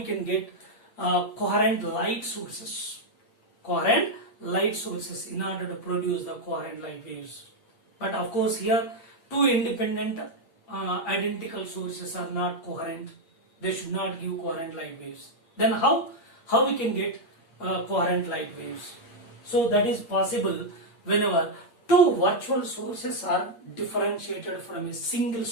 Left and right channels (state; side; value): late; right; 8.6 ms